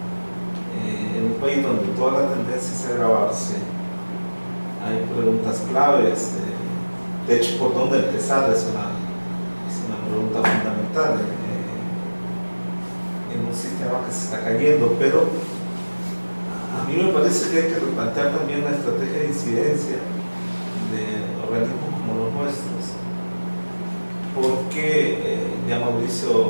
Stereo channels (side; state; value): both; inverted; correlation -1.00